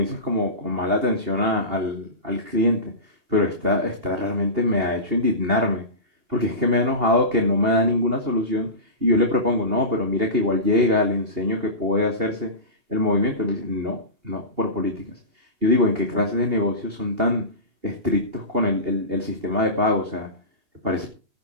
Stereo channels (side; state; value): left; late; 2.8 ms